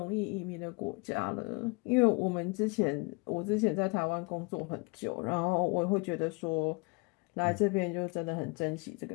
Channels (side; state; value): right; quieter; 29.4 dB